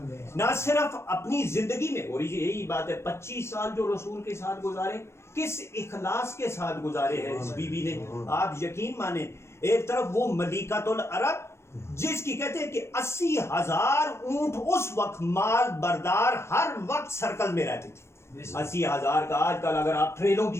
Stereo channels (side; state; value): right; late; 0.13 ms